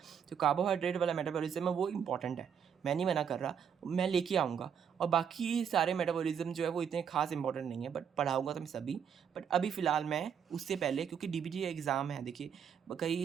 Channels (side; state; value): left; quieter; 7.8 dB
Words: तो कार्बोहाइड्रेट वाला मेटाबॉलिज्म है वो इम्पॉर्टेंट है, मैं नहीं मना कर रहा, मैं लेके आऊँगा। और बाकी सारे मेटाबॉलिज्म जो है वो इतने खास इंपॉर्टेंट नहीं है, बट पढ़ाऊँगा तो मैं सभी, बट अभी फ़िलहाल मैं उससे पहले, क्योंकि DBT एग्ज़ाम है, देखिए